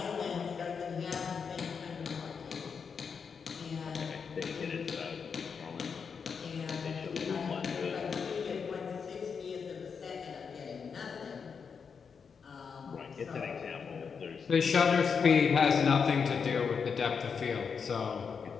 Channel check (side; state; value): right; quieter; 6.1 dB